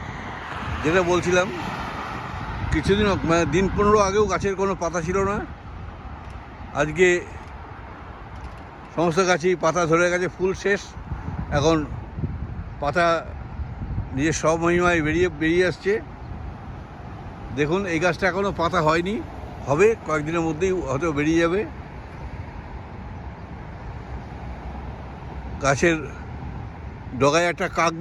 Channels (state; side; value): identical; both; correlation 1.00